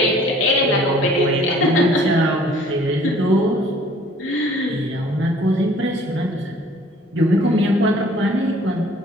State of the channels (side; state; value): both; normal; correlation 0.54